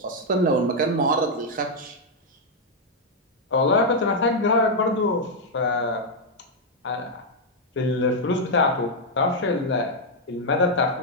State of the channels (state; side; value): normal; both; correlation -0.01